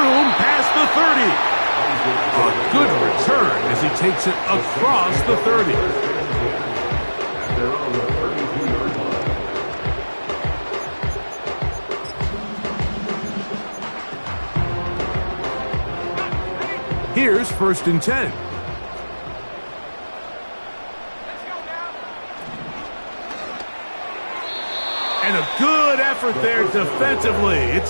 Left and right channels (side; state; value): both; inverted; correlation -1.00